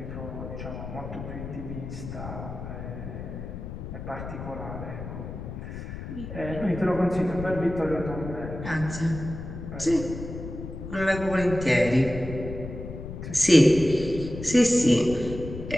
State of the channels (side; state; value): left; noise; rumble, 9 dB below the sound